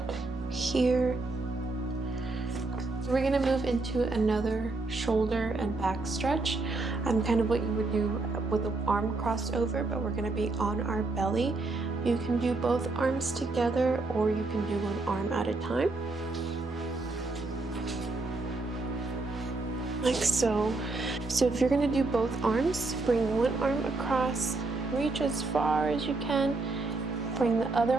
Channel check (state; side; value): quieter; left; 3.4 dB